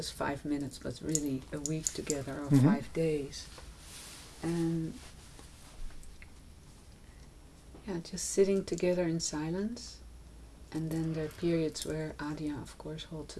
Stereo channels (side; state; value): both; identical; correlation 1.00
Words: 5 minutes, but really a week together or Mm-hmm. 5 days. And just sitting together in silence. And then there are periods where Adya, of course, holds